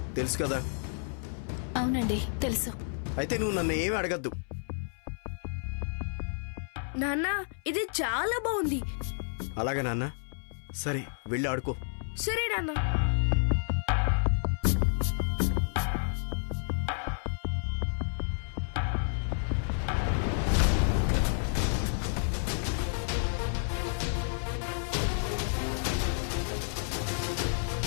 తెలుసు కదా. అవునండి, తెలుసు. అయితే నువ్వు నన్ను ఏమీ అడగద్దు. నాన్న, ఇది చాలా బాగుంది. అలాగే నాన్న, సరే వెళ్ళి ఆడుకో. సరే నాన్న.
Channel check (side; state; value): right; silent; 57 dB below the other